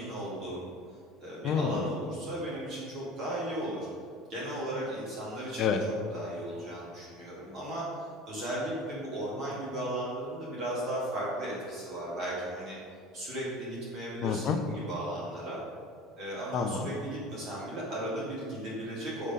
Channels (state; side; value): normal; both; correlation 0.39